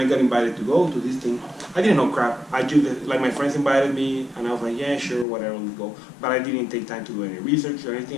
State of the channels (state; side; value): drops out; right; at 5.2 s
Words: got invited to go to this thing, I didn't know crap. I just, like my friends invited me, and I was like, yeah, sure, whatever, let's go. But I didn't take time to do any research or